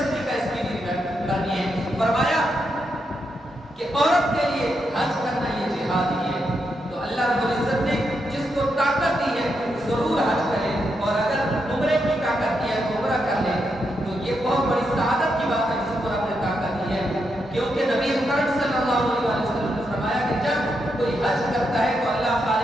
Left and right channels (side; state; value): both; normal; correlation 0.83